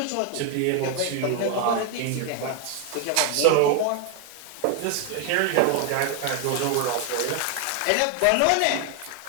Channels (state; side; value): different; both; correlation 0.01